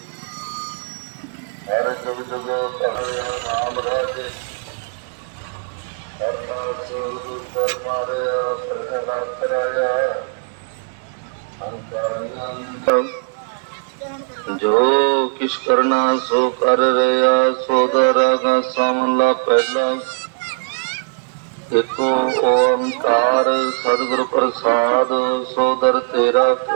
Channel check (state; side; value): silent; left; digital silence